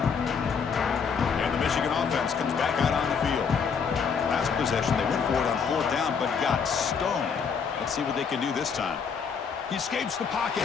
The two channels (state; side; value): quieter; right; 6.2 dB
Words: And the Michigan offense comes back out on the field. Last possession, they went for it on 4th down, but got stoned. Let's see what they can do this time. He escapes the pocket.